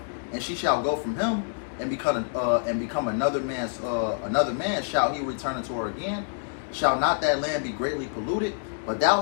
and she shall go from him, and become another man shall he return unto her again. Shall not that land be greatly polluted? But thou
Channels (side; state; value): right; silent; digital silence